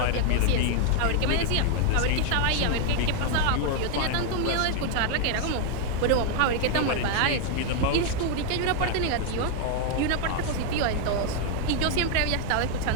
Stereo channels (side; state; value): both; different; correlation 0.00